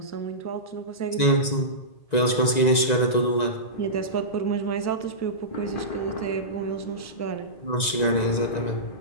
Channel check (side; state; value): right; late; 1.9 ms